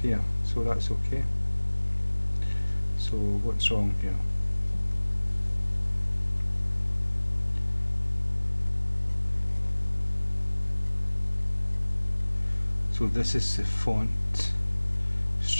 here, so that's okay. So what's wrong here? So this is the font,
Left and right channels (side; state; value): both; inverted; correlation -1.00